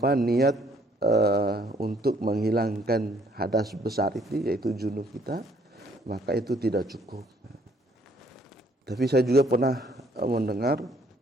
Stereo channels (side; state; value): both; normal; correlation 0.64